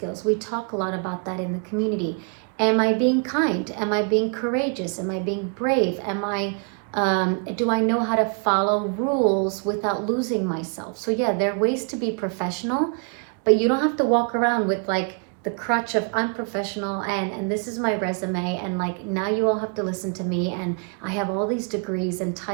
We talk a lot about that in the community. Am I being kind? Am I being courageous? Am I being brave? Do I know how to follow rules without losing myself? So yeah, there are ways to be professional, but you don't have to walk around with like the crutch of I'm professional and this is my resume, and like now you all have to listen to me and I have all these degrees and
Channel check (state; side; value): quieter; left; 39.1 dB